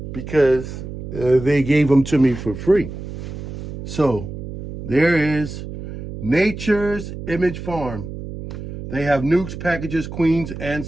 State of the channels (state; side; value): noise; right; hum, 9 dB below the sound